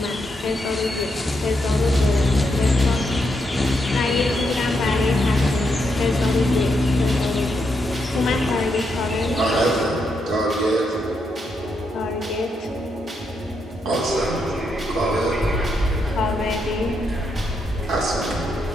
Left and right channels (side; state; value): both; normal; correlation 0.80